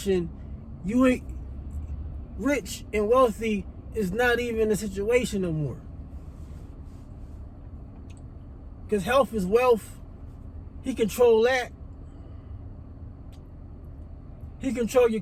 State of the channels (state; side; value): identical; both; correlation 1.00